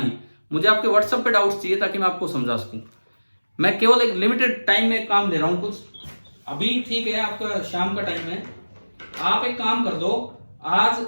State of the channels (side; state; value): both; inverted; correlation -1.00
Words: मुझे आपके व्हाट्सएप पे डाउट्स चाहिए ताकि मैं आपको समझा सकूं। मैं केवल एक लिमिटेड टाइम में काम दे रहा हूं कुछ, अभी ठीक है आपका शाम का टाइम है, आप एक काम कर दो, आज